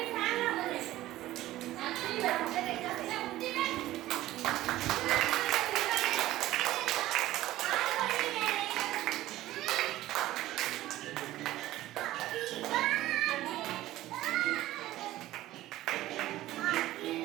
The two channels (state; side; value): quieter; left; 15.5 dB